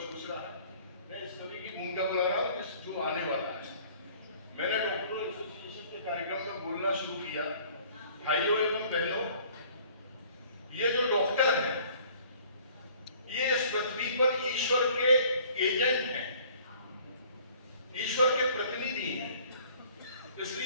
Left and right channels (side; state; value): both; inverted; correlation -0.54